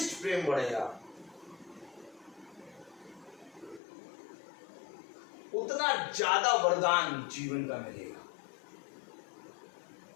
प्रेम बढ़ेगा उतना ज्यादा वरदान जीवन का मिलेगा।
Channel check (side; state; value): right; drops out; at 3.8 s